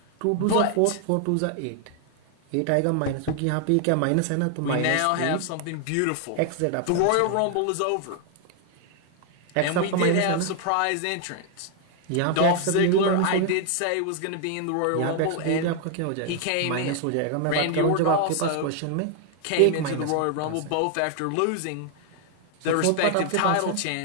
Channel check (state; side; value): different; both; correlation 0.00